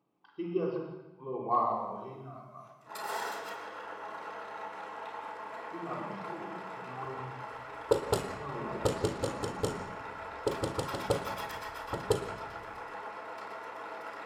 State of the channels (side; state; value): both; identical; correlation 1.00